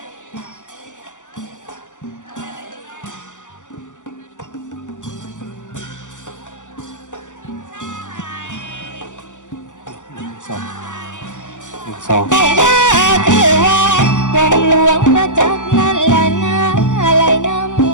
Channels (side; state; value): right; late; 0.86 ms